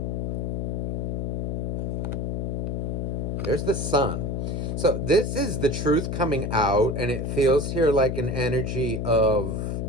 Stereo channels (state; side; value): noise; left; hum, 1 dB below the sound